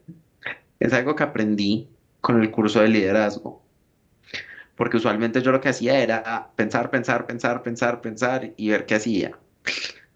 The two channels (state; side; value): identical; both; correlation 1.00